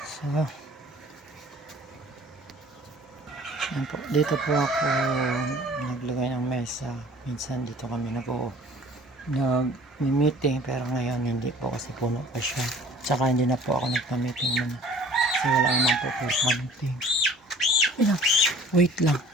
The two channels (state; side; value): normal; both; correlation 0.49